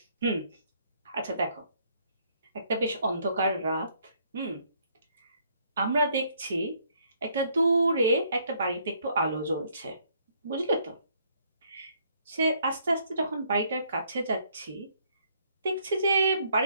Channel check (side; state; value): both; inverted; correlation -0.67